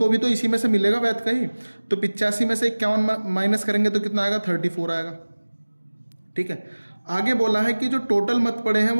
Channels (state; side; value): inverted; both; correlation -1.00